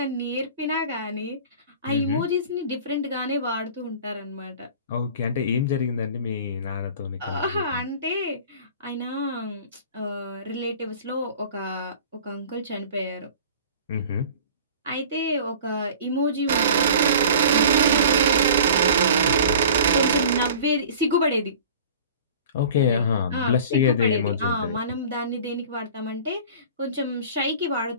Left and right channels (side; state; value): both; inverted; correlation -0.42